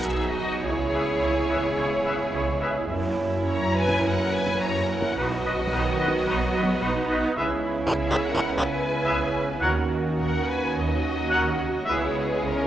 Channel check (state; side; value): normal; both; correlation 0.87